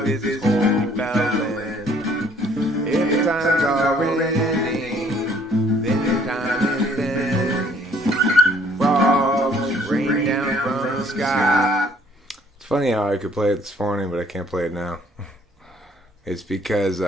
his hole he fell in. If times are ending, then time is bending. Frogs rain down from the sky. It's funny how I could play it this morning, but I can't play it now. It's because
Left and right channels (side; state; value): both; normal; correlation 0.61